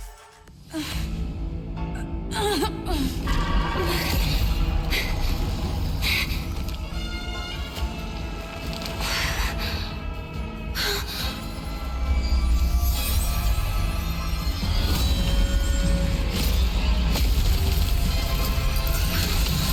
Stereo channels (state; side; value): identical; both; correlation 1.00